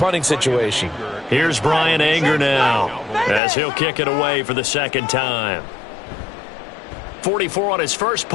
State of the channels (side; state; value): right; drops out; at 3.4 s